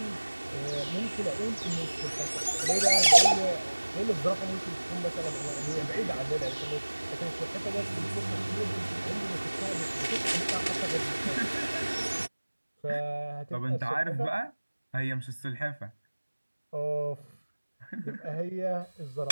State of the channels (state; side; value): inverted; both; correlation -1.00